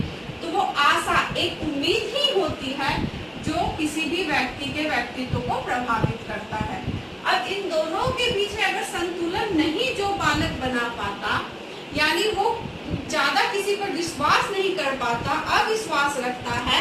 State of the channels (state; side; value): identical; both; correlation 1.00